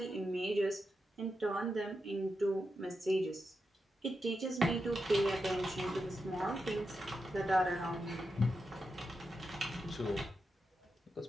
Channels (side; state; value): both; normal; correlation 0.87